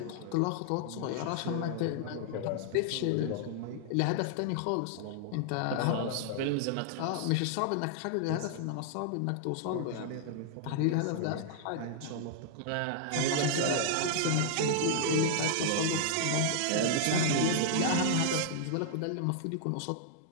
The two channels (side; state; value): both; different; correlation -0.01